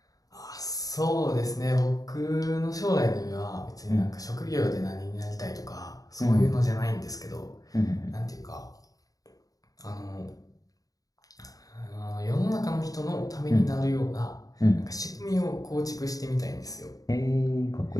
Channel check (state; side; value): late; right; 0.18 ms